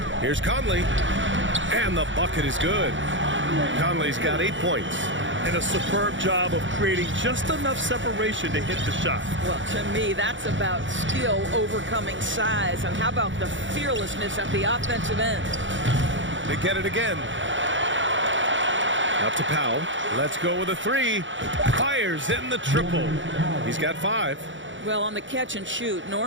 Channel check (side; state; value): left; late; 0.55 ms